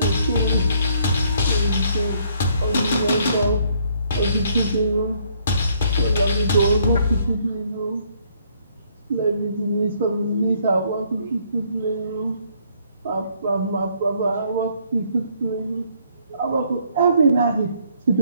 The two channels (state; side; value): inverted; both; correlation -0.67